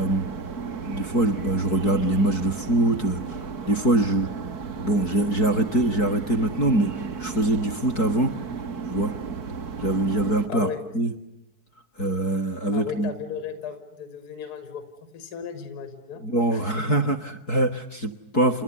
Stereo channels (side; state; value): right; late; 4.6 ms